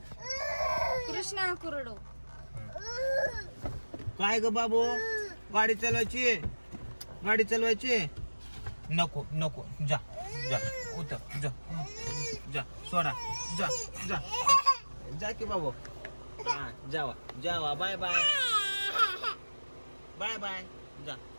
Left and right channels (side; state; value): both; inverted; correlation -1.00